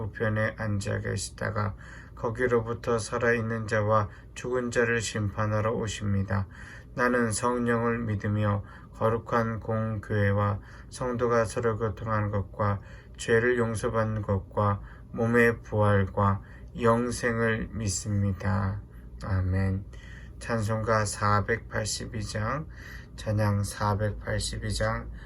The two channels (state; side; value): identical; both; correlation 1.00